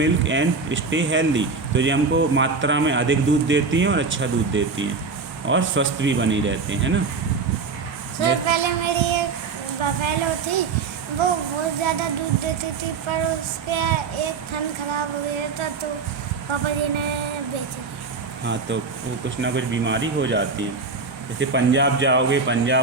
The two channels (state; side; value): quieter; left; 4.7 dB